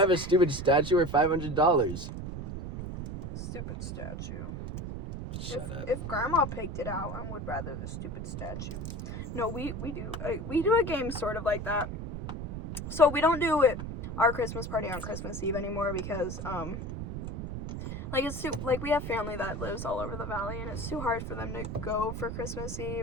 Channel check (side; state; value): right; noise; rumble, 6 dB below the sound